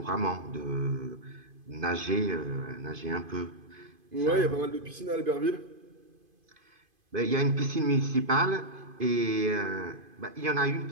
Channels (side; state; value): left; late; 2.5 ms